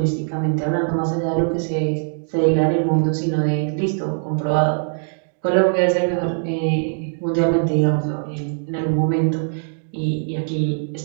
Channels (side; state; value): left; silent; digital silence